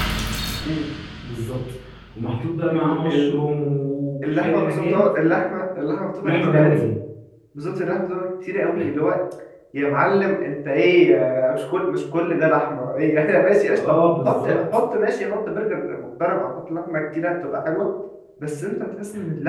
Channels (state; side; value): identical; both; correlation 1.00